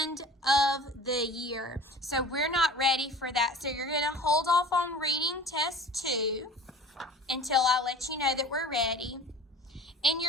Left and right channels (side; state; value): both; normal; correlation 0.41